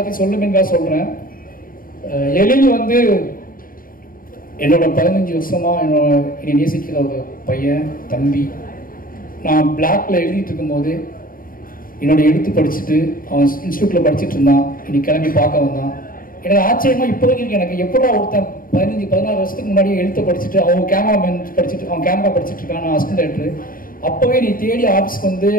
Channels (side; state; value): right; late; 0.41 ms